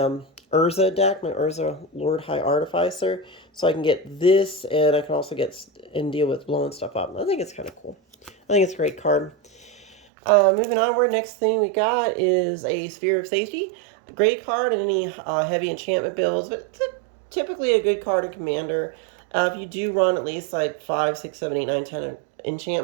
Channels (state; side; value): drops out; left; at 10.0 s